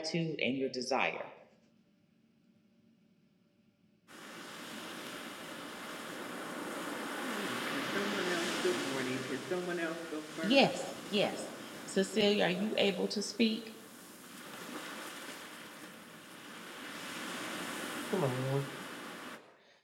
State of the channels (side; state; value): both; identical; correlation 1.00